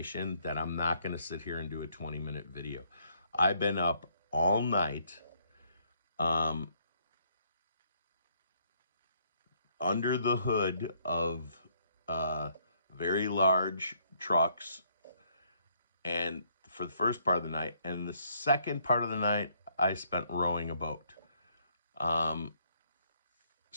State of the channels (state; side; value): inverted; both; correlation -0.69